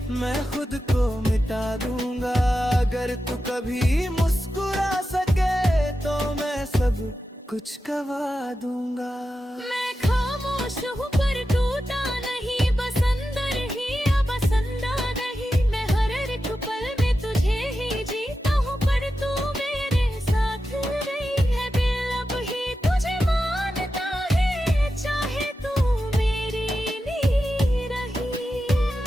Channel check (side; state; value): both; normal; correlation 0.91